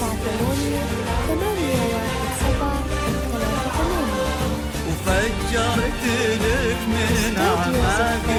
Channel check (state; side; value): identical; both; correlation 1.00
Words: وفجرت لك من أعماق